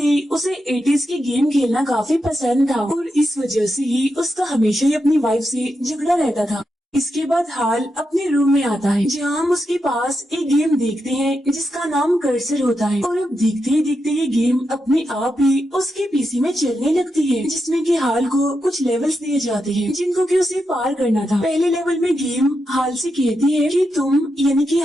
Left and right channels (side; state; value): both; normal; correlation 0.86